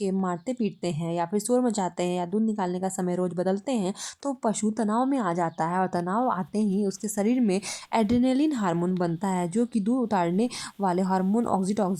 मारते पीटते हैं या फिर शोर मचाते हैं या दूध निकालने का समय रोज़ बदलते हैं तो पशु तनाव में आ जाता है और तनाव आते ही उसके शरीर में एड्रेनलिन हार्मोन बनता है जो कि दूध उतारने वाले हार्मोन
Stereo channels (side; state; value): both; identical; correlation 1.00